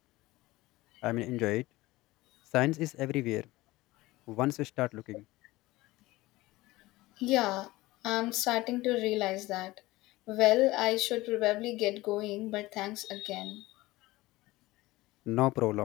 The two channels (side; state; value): right; quieter; 19.1 dB